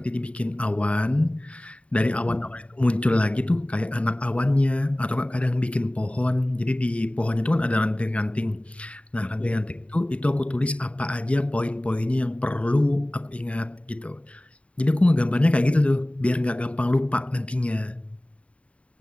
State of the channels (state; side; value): late; right; 0.063 ms